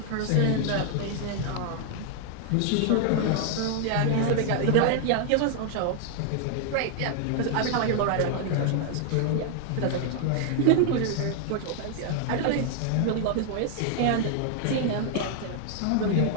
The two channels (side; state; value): both; different; correlation 0.00